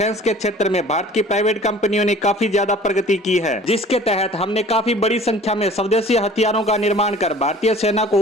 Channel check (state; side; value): normal; both; correlation 0.48